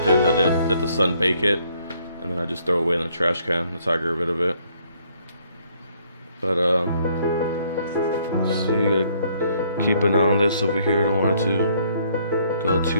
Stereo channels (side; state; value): both; inverted; correlation -0.66